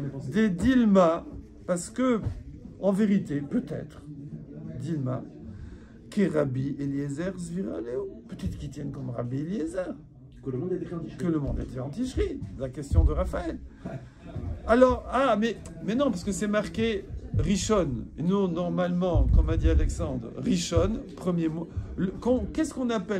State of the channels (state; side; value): identical; both; correlation 1.00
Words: Des Dilma, parce que, en vérité, peut-être, Dilma, que Rabbi Eliezer Zviraleo. Peut-être qu'ils tiennent comme Rabbi Eliezer. Que le monde était en Ticherie. Que le monde était en Ticherie. La question de Raphaël. Alors, mais non, parce que c'est marqué Rishon. Et nous, normalement, comme a dit Alexandre, Rishon, premier mot. Qu'est-ce qu'on